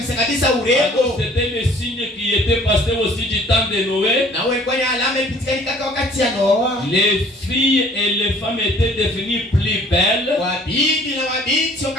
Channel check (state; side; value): normal; both; correlation 0.54